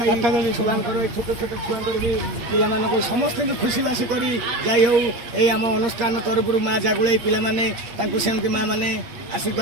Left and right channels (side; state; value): left; late; 8.5 ms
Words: ଛୁଆଙ୍କର ଛୋଟ ଛୋଟ ଛୁଆଙ୍କର ବି ପିଲାମାନଙ୍କୁ ସମସ୍ତଙ୍କୁ ଖୁସିବାସି କରି ଯାଇ ହେଉ ଏଇ ଆମ ଅନୁଷ୍ଠାନ ତରଫରୁ ମା ଜାଗୁଳେଇ ପିଲାମାନେ ତାଙ୍କୁ ସେମିତି ମା ମାନେ